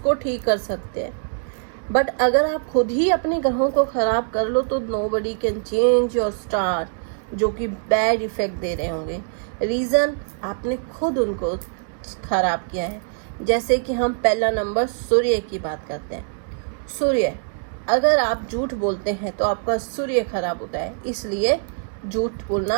ठीक कर सकते हैं, बट अगर आप खुद ही अपने ग्रहों को खराब कर लो तो nobody can change your star, जो कि बैड इफेक्ट दे रहे होंगे। रीजन आपने खुद उनको खराब किया है। जैसे कि हम पहला नंबर सूर्य की बात करते हैं। सूर्य, अगर आप झूठ बोलते हैं तो आपका सूर्य खराब होता है, इसलिए झूठ बोलना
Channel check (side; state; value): left; silent; digital silence